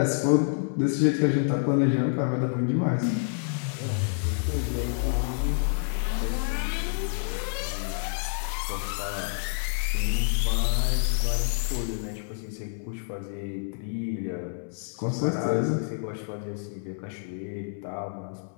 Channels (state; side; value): silent; right; 59 dB below the other